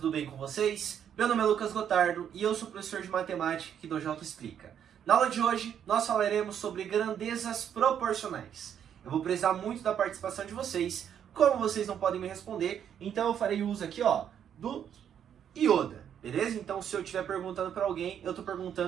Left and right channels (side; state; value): left; quieter; 9.0 dB